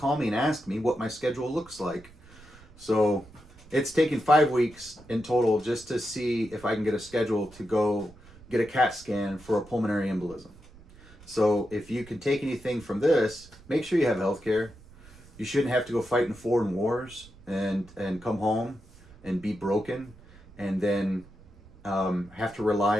me and ask me what my schedule looks like. So it's taken 5 weeks in total just to see if I can get a schedule to go get a CAT scan for a pulmonary embolism. So if you can take anything from this, make sure you have health care. You shouldn't have to go fight in foreign wars and come home and be broken and then have to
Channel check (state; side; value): noise; right; rumble, 23 dB below the sound